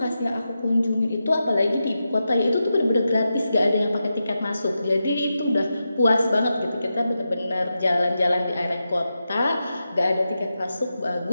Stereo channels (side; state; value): both; inverted; correlation -0.89